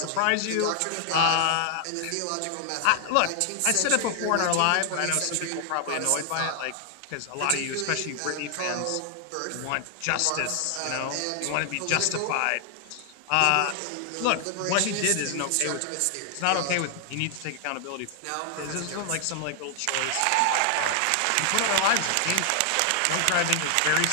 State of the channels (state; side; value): different; both; correlation 0.00